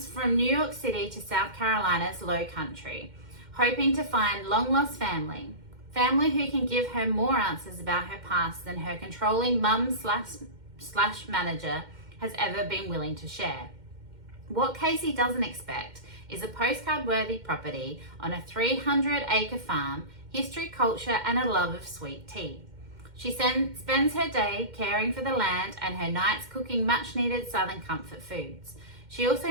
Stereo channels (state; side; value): late; left; 2.1 ms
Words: from New York City to South Carolina's low country, hoping to find long-lost family who can give her more answers about her past than her controlling mum slash manager has ever been willing to share. What Casey doesn't expect is a postcard-worthy property on a 300-acre farm, history, culture, and a love of sweet tea. She spends her day caring for the land and her nights cooking much-needed Southern comfort foods. She